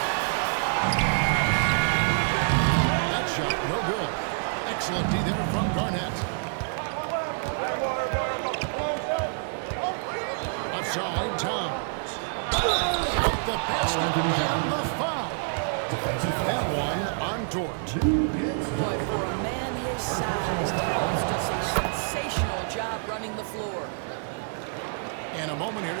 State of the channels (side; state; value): left; silent; digital silence